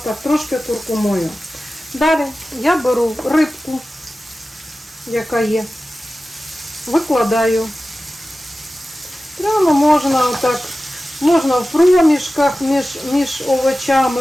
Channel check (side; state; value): both; normal; correlation 0.95